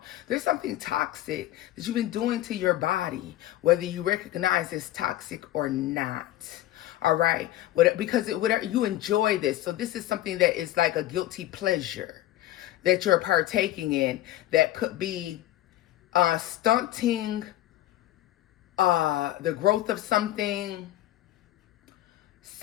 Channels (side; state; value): right; quieter; 14.7 dB